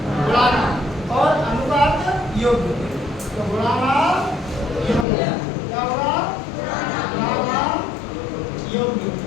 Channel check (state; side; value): drops out; right; at 5.1 s